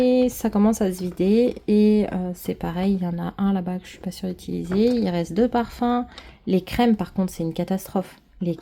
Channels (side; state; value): both; identical; correlation 1.00